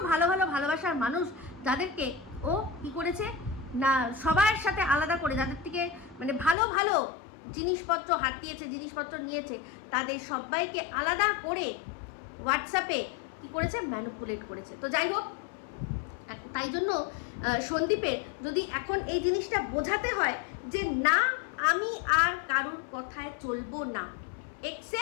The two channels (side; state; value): right; drops out; at 6.6 s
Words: ভালোবাসার মানুষ, যাদেরকে ও কি করেছে না সবার সাথে আলাদা করে, যাদের থেকে মানে ভালো জিনিসপত্র হাতিয়েছে, জিনিসপত্র নিয়েছে, তাদের সবাইকে আলাদা করে হোয়াটসঅ্যাপে কি করেছে ম্যানিপুলেট করেছে। তো যাই হোক, তাই জন্য সন্দীপের যদি এখন এই জিনিসটা বোঝাতে হয় যে না আমি আর কারুর কথায় চলবো না,